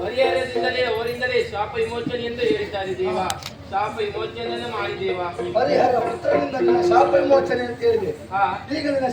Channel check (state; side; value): identical; both; correlation 1.00